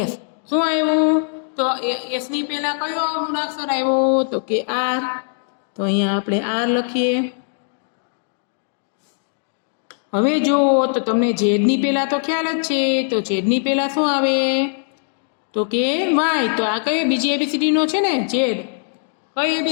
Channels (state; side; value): silent; right; 65 dB below the other